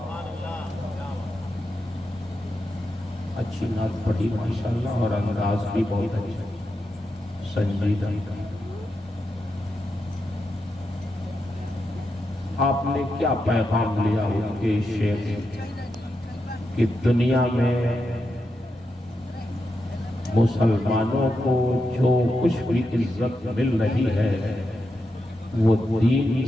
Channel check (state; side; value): normal; both; correlation 0.86